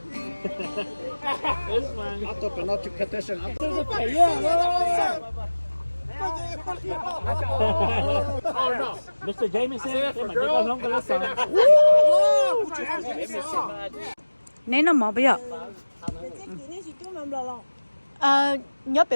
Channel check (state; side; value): inverted; both; correlation -1.00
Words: This one. I thought not to petition. There's a pay, yeah. Oh no. Mr. Jameson, cái mà chỉ có không có lá sò. Nên nó mỏ bây giờ. Nhớ bị